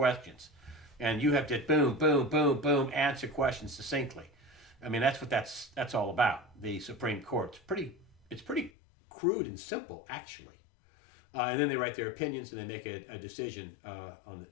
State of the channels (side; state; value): right; drops out; at 8.7 s